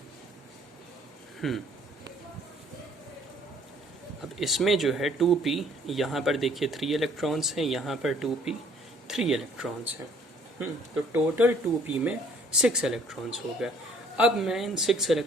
अब इसमें जो है 2p, यहाँ पर देखिए 3 इलेक्ट्रॉन्स हैं, यहाँ पर 2p 3 इलेक्ट्रॉन्स हैं। तो टोटल 2p में 6 इलेक्ट्रॉन्स हो गए। अब मैं इन 6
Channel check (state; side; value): normal; both; correlation 0.60